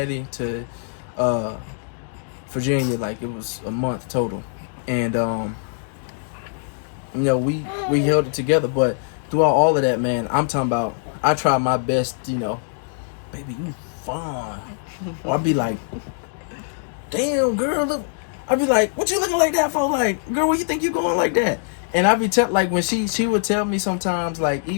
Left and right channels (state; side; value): silent; right; digital silence